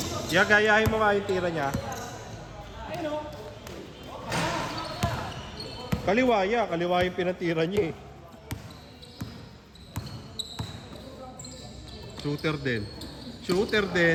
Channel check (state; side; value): identical; both; correlation 1.00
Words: Gayahin mo nga yung tira niya. Kaliwa yung pinatira niya eh. Shooter din. Shooter